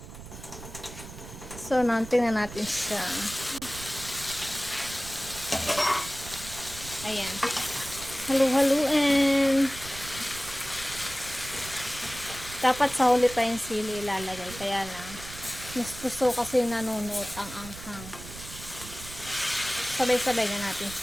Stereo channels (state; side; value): noise; right; rumble, 13 dB below the sound